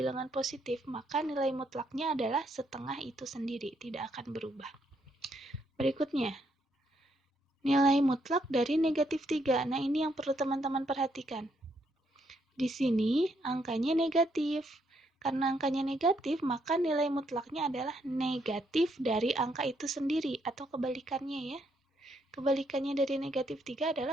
positif, maka nilai mutlaknya adalah setengah itu sendiri, tidak akan berubah. Berikutnya, nilai mutlak dari negatif 3. Nah, ini yang perlu teman-teman perhatikan. Di sini angkanya negatif. Karena angkanya negatif, maka nilai mutlaknya adalah negatif dari angka itu sendiri, atau kebalikannya ya. Kebalikannya dari negatif 3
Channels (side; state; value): both; normal; correlation 0.74